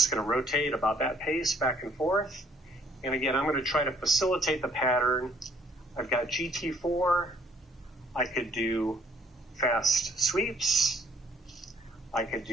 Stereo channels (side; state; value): both; normal; correlation 0.62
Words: going to rotate about that pace back and forth. And again, I'm going to try to facilitate the pattern I've got GT4. I could do fast sweeps. I could